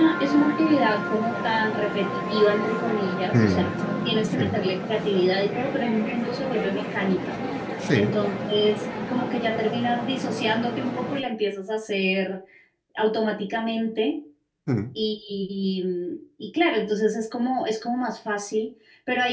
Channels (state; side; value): identical; both; correlation 1.00